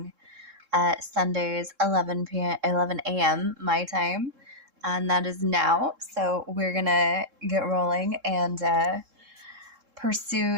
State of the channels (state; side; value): late; left; 3.7 ms